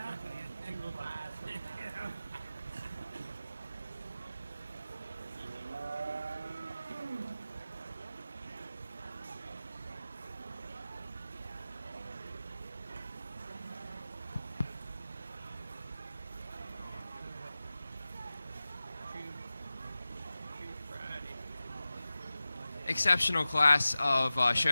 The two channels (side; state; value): both; inverted; correlation -0.96